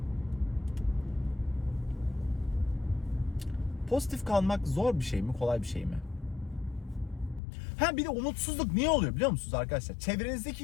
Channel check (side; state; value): right; drops out; at 7.4 s